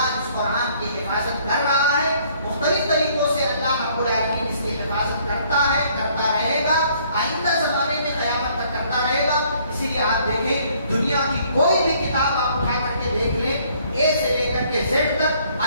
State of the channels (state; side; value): inverted; both; correlation -0.62